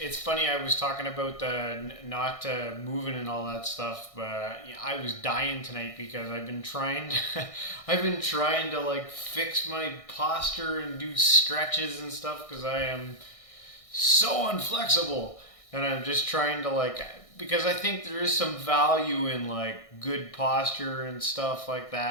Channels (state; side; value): late; right; 1.6 ms